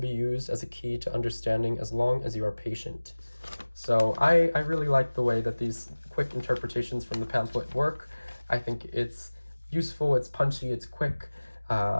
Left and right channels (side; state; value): both; inverted; correlation -1.00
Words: used as a key to understanding as long as you are patient. So I really like the way that these quick interpretations from the pamphlet work. I think it's useful, it's punchy, it's quick.